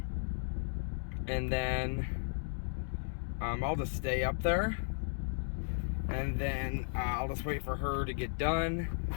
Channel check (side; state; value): right; silent; digital silence